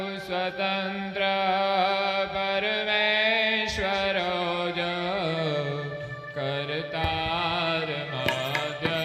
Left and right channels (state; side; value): identical; both; correlation 1.00